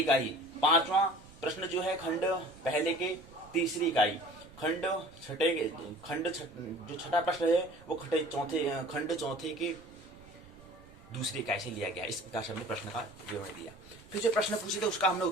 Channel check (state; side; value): noise; right; rumble, 22 dB below the sound